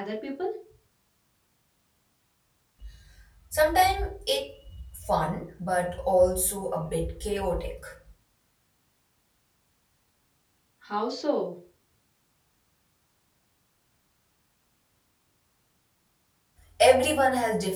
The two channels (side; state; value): both; identical; correlation 1.00